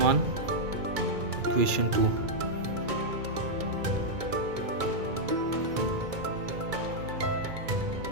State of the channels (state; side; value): late; left; 2.2 ms